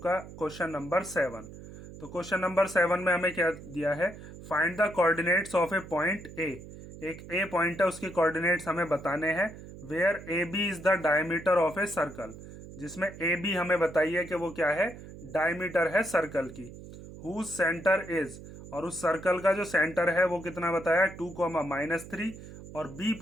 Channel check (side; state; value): right; noise; hum, 15 dB below the sound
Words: क्वेश्चन नंबर 7। तो क्वेश्चन नंबर 7 में हमें क्या दिया है, find the coordinates of a point A. एक ए पॉइंट है, उसके कोऑर्डिनेट्स हमें बताने हैं। Where A B is the diameter of a circle, जिसमें ए बी हमें बताइए कि वो क्या है, डायमीटर है सर्कल की। हुज सेंटर इज, और उस सर्कल का जो सेंटर है वो कितना बताया, 2, -3, और बी